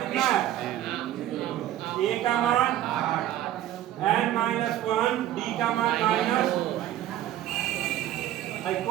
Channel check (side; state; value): left; quieter; 12.6 dB